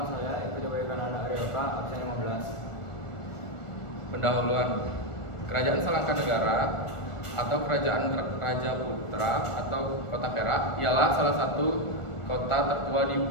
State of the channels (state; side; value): late; right; 1.4 ms